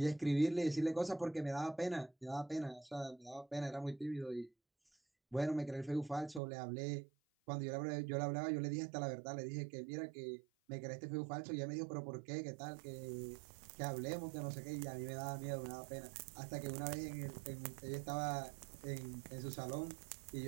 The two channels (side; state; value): left; drops out; at 6.4 s